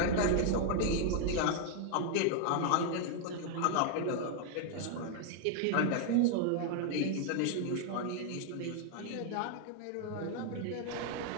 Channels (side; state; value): both; different; correlation 0.00